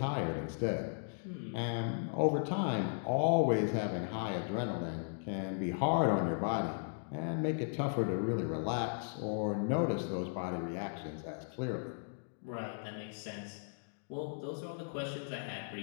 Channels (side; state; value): right; silent; digital silence